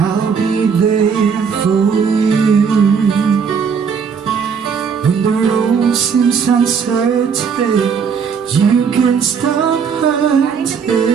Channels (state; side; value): quieter; left; 6.3 dB